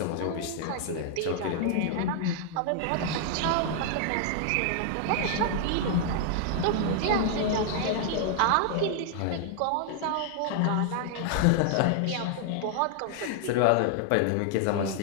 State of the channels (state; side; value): different; both; correlation 0.00